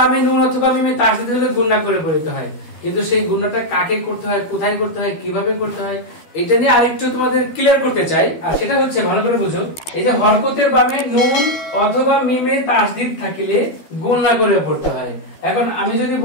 নুন অথবা মিমে তাসদীদ হলে গুনাহ করে পড়তে হয়, কিন্তু সেই গুনাহটা কাকে করতে হয়, কোথায় করতে হয়, কিভাবে করতে হয়, এটা নিয়ে আরেকটু তোমাদের ক্লিয়ার করতে চাই। আর সেটা হচ্ছে, ভালো করে বুঝো, এই যে হরকতের বামে নুন অথবা মিমে তাসদীদ থাকিলে গুনাহ করে পড়তে হয়। এখন আমি যদি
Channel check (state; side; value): late; right; 12 ms